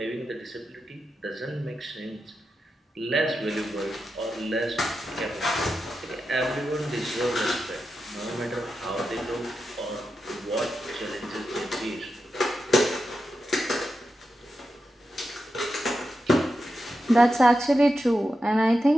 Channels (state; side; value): normal; both; correlation 0.89